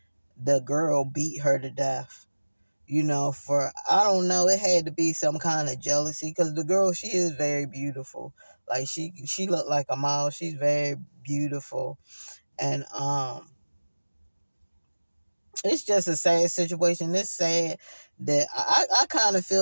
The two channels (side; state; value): both; inverted; correlation -1.00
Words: the girl beat her to death. For I don't know, it had to be some kind of jealousy because the girl, she is very beautiful. Like she looked like a model. She's very beautiful, and it's just a sad situation. It's sad that I kind of